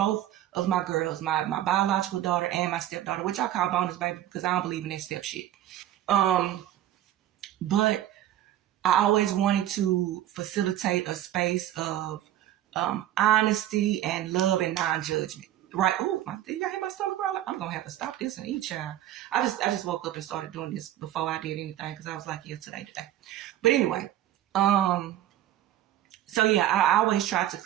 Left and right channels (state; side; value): quieter; left; 12.7 dB